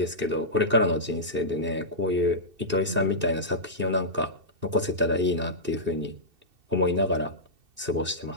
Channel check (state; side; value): late; left; 2.7 ms